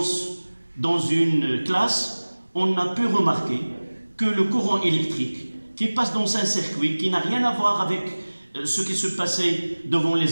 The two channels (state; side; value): inverted; both; correlation -1.00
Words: dans une classe, on a pu remarquer que le courant électrique qui passe dans un circuit qui n'a rien à voir avec ce qui se passait devant